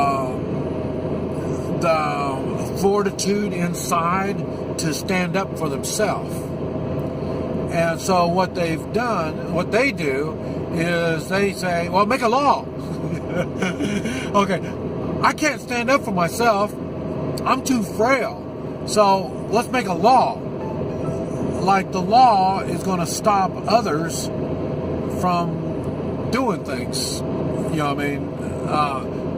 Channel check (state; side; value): identical; both; correlation 1.00